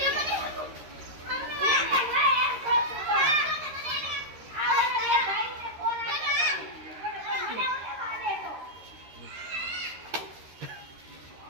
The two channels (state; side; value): late; left; 13 ms